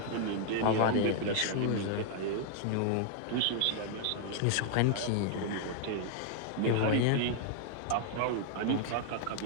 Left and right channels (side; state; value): both; different; correlation 0.00